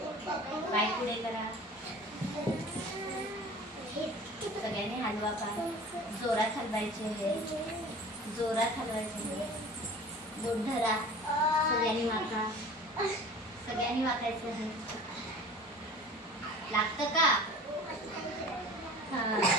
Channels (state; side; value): normal; both; correlation 0.41